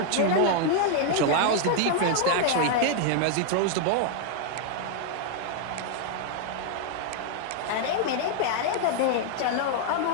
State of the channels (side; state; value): both; different; correlation 0.00